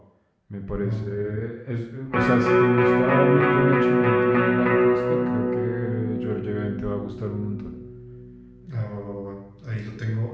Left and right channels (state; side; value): identical; both; correlation 1.00